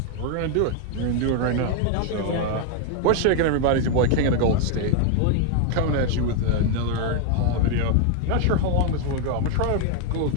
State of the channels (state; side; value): different; both; correlation 0.01